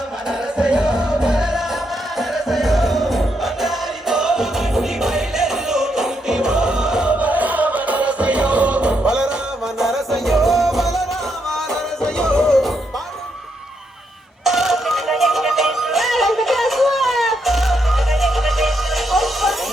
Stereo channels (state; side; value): normal; both; correlation 0.79